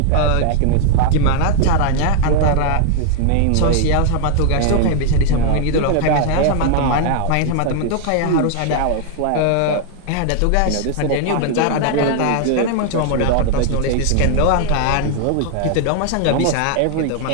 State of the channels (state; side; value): different; both; correlation 0.00